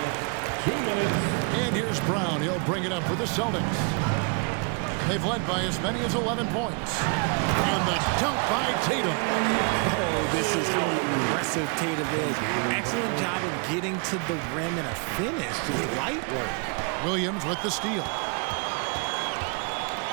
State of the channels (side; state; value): left; quieter; 36.0 dB